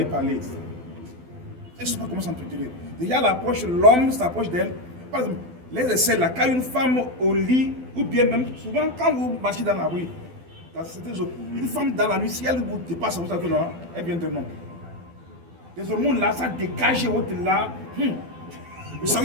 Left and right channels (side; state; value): left; late; 12 ms